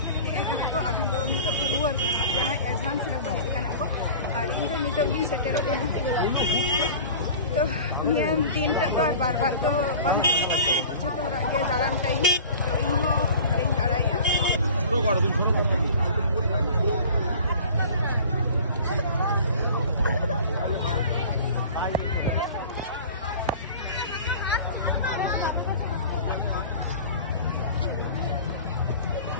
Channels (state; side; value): inverted; both; correlation -0.41